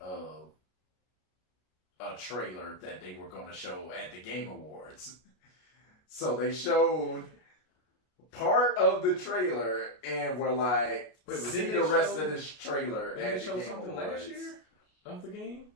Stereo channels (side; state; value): right; late; 33 ms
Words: a trailer that they were going to show at the Game Awards. So they showed part of the trailer and were like, see the rest of this trailer at the Game Awards. Did they show something last year of the game?